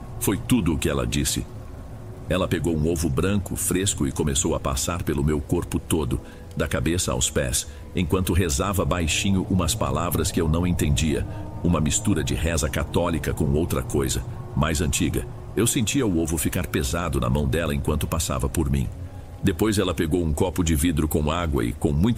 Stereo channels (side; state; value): both; identical; correlation 1.00